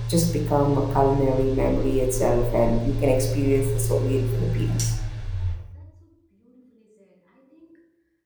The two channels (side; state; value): both; identical; correlation 1.00